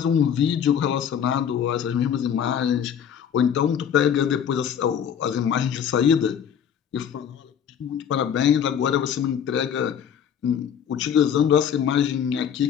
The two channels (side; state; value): right; quieter; 8.4 dB